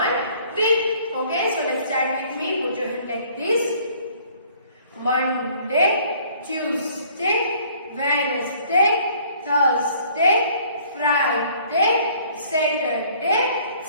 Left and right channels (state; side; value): inverted; both; correlation -0.57